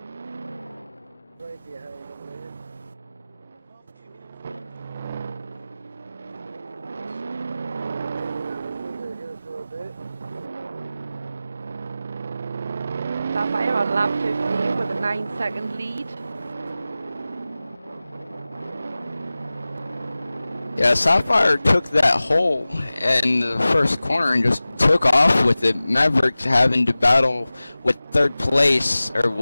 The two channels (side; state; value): both; inverted; correlation -0.97